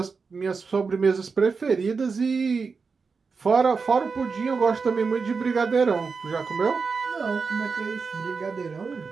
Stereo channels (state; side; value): quieter; left; 5.0 dB